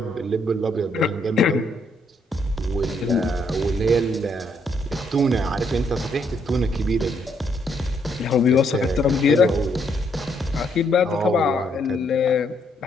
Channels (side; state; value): both; normal; correlation 0.73